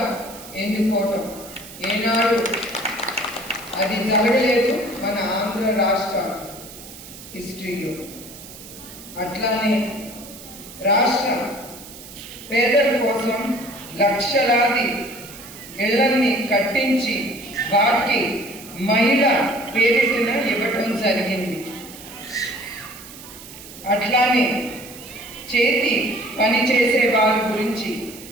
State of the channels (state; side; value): noise; right; hiss, 16 dB below the sound